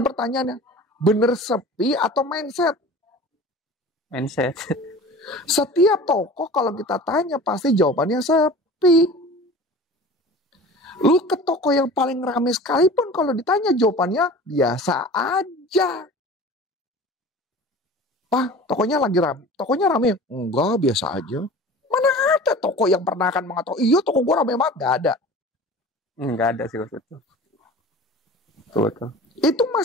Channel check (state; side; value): normal; both; correlation 0.40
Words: pertanyaannya, bener sepi atau mindset? Mindset. Setiap toko kalau kita tanya pasti jawabannya sepi. Lu ke toko yang paling ramai sekalipun kalau ditanya jawabannya biasa aja. Pak, tokonya lagi ramai. Tokonya ramai? Enggak, biasa aja. Mana ada toko yang pernah akan mengatakan, iya toko gua ramai banget? Gak ada. Enggak ada sih Coach. Betul. Itu